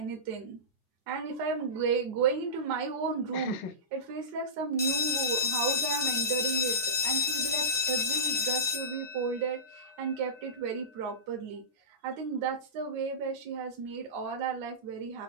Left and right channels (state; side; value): normal; both; correlation -0.20